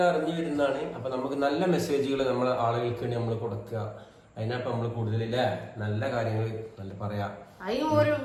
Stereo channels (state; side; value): identical; both; correlation 1.00